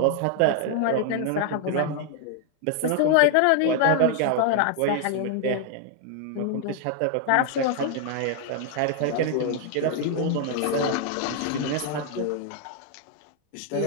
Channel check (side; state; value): both; different; correlation 0.00